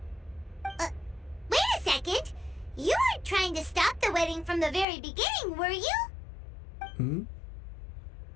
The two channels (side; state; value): right; drops out; at 4.9 s